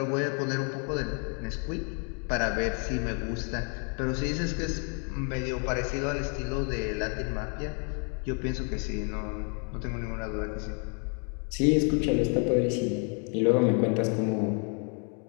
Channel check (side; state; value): right; quieter; 39.3 dB